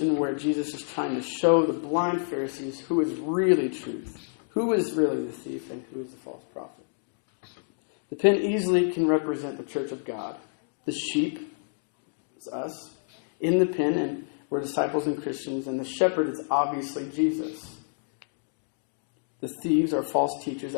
where Jesus is trying to show the blind Pharisees who is really truth, who is really the thief, and who is the false prophet. The pen easily can represent the church of God. The sheep is us in the pen, and we're disciples and Christians, and the shepherd is obviously Jesus. The thieves are false teachers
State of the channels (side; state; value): right; silent; digital silence